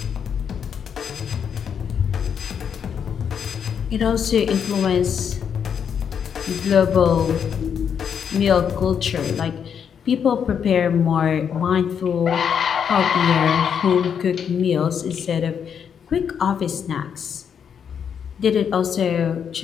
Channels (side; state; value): right; quieter; 7.6 dB